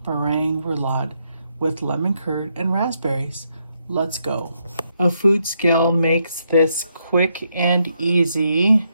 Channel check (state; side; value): inverted; both; correlation -0.78